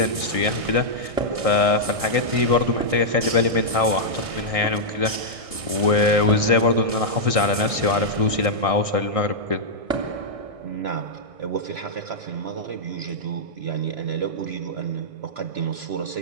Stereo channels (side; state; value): left; late; 1.6 ms